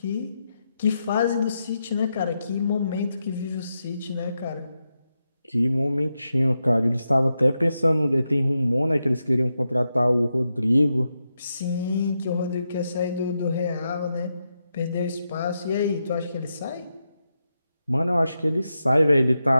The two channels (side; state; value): both; inverted; correlation -0.86